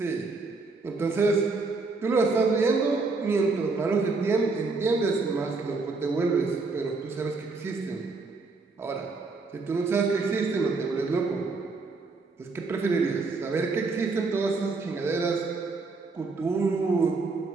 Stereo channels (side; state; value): left; quieter; 3.9 dB